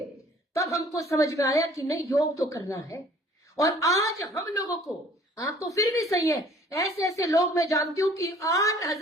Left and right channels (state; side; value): normal; both; correlation 0.54